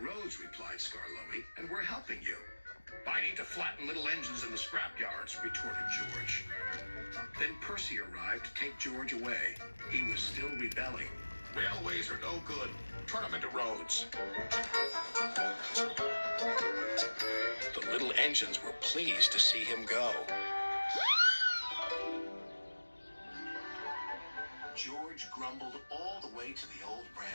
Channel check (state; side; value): inverted; both; correlation -1.00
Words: replied Skarloey, and we're helping you. I need to flatten little engines in the scrapyards, retorted George. Then Percy arrived to take George away. He was still rebelling. Railways are no good. Turn them into roads. The little engines were pleased to see him go. George grumbled all the way to the old